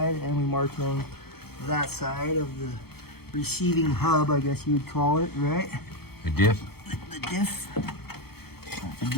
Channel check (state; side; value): late; right; 0.96 ms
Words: and we marked it on that side of the receiving hub, I guess you would call it, right? The diff? The diff. Not the